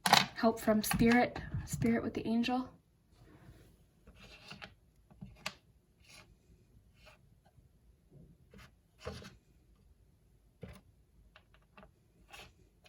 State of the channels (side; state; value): both; identical; correlation 1.00